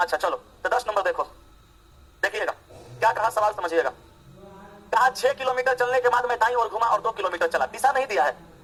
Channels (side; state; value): both; identical; correlation 1.00